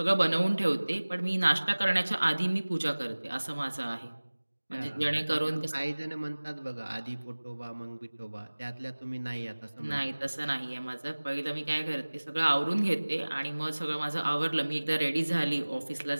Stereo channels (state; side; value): inverted; both; correlation -1.00